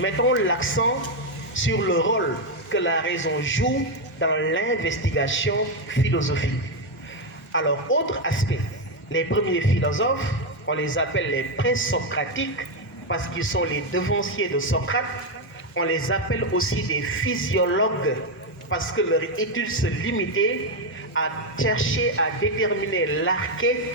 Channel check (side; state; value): both; normal; correlation 0.05